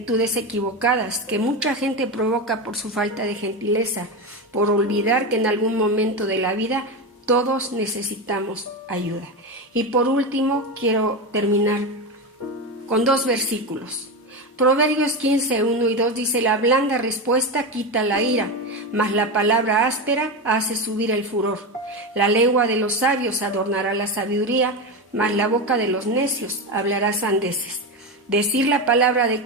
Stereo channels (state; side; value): normal; both; correlation 0.16